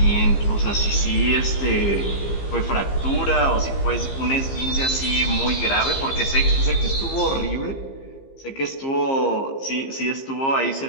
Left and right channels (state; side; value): late; right; 15 ms